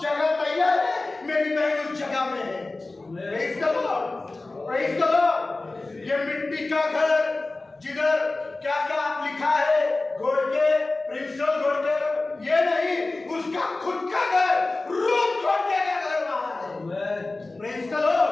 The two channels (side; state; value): right; quieter; 3.2 dB